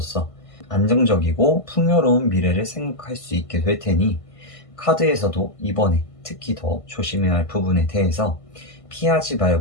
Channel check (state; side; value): late; right; 1.5 ms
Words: 안정적이고 풍요로운 미래를 생각할 수 있게 될 테니 카드에서도 이번에 특히 더 조심해야 할 부분에 대해서 피하지